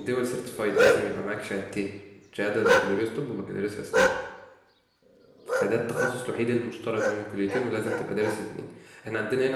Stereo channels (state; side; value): identical; both; correlation 1.00